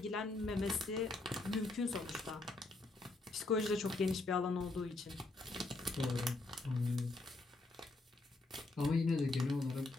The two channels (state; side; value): quieter; right; 3.1 dB